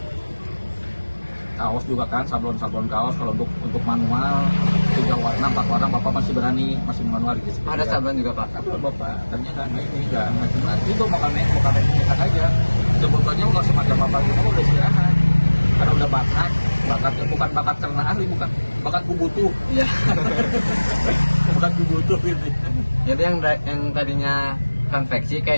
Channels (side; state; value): both; inverted; correlation -1.00